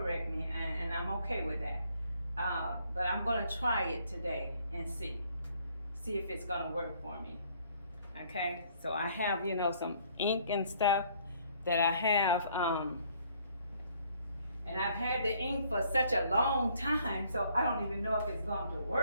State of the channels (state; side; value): inverted; both; correlation -0.63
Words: me, and I'm okay with that. But I'm gonna try it today and see if it's gonna work for me. Okay, so I have, you know, some ink and stuff that I have, and I've had the ink for such a long time, so I don't even know if it's going to